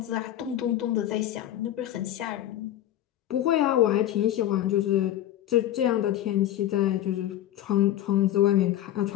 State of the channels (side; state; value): right; quieter; 12.6 dB